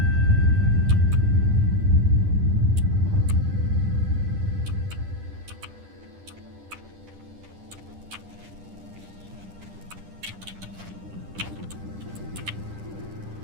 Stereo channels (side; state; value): left; late; 10 ms